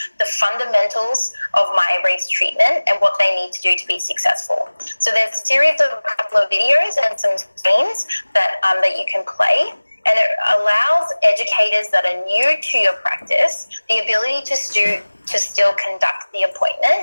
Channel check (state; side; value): inverted; both; correlation -1.00